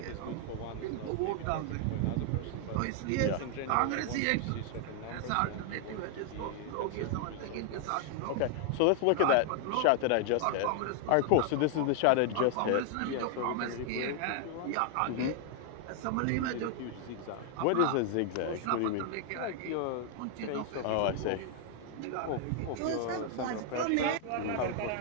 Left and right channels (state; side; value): different; both; correlation 0.00